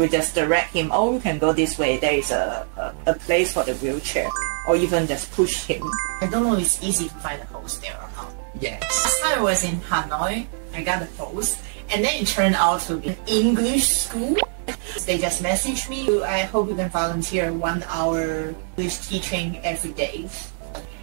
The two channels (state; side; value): silent; left; 59 dB below the other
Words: just direct him, oh, you can go this way, there is a place for the wheelchair. Or even just push him. I don't know if it's easy to find a host there or not. Yes. Last time I was in Hanoi, I got a post, and then it turned out to be an English school. They just messaged me, I hope you can volunteer 1 hour English teaching every day.